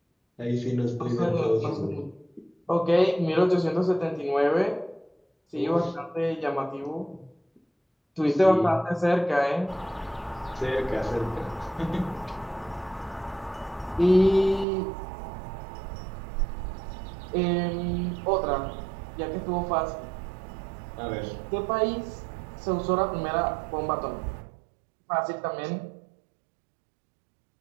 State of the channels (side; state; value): left; drops out; at 14.7 s